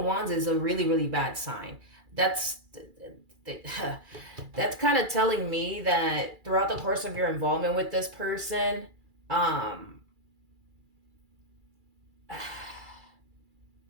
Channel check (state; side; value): late; left; 2.3 ms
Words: wands is a really, really bad sign. That's that's kind of telling me that throughout the course of your involvement with this person, um,